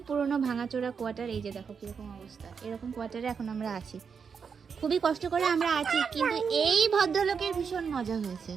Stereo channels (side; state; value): left; quieter; 6.2 dB